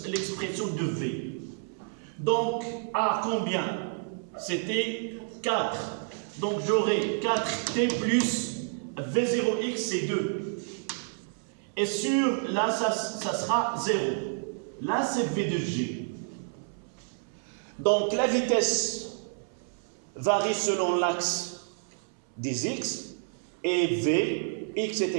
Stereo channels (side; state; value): left; silent; 58 dB below the other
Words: de V. Donc, à combien? C'était 4. Donc, j'aurai 4t plus V0x, c'est 2. Et sur, là, ça sera 0. Là, c'est V de G. Donc, la vitesse varie selon l'axe des x, et V, x est